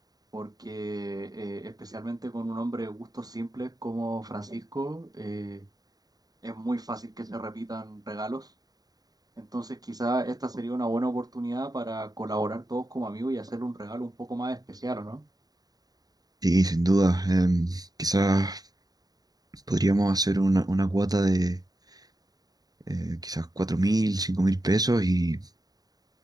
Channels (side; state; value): left; late; 0.18 ms